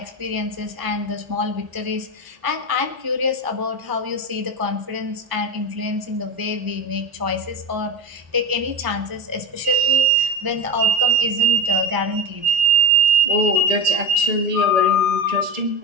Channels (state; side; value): late; left; 1.0 ms